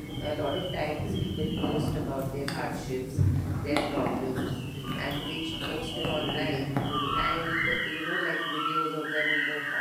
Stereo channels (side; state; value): both; identical; correlation 1.00